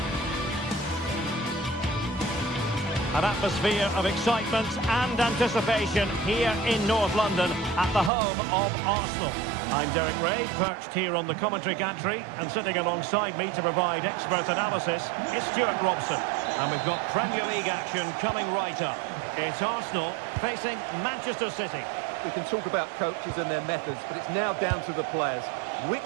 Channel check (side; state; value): left; drops out; at 8.1 s